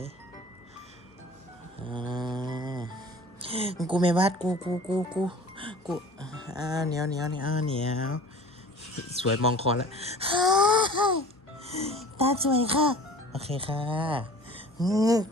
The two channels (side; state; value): both; normal; correlation 0.44